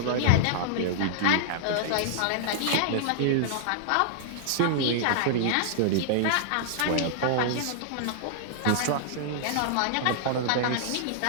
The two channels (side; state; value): both; different; correlation -0.01